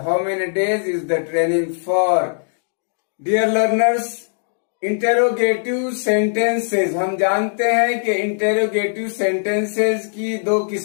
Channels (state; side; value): silent; right; digital silence